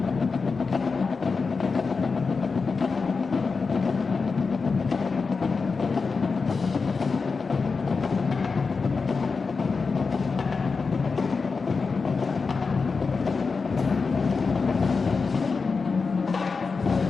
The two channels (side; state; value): right; quieter; 4.7 dB